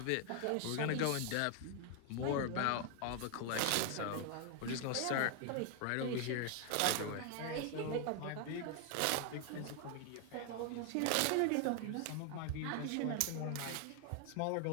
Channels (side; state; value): both; different; correlation 0.00